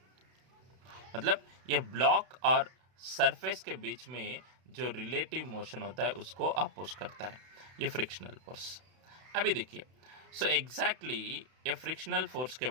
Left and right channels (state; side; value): late; left; 32 ms